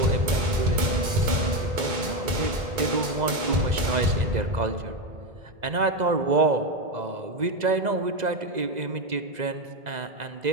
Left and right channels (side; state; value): left; late; 2.0 ms